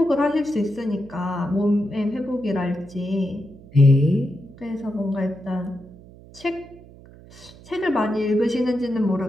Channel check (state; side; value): noise; right; hum, 21 dB below the sound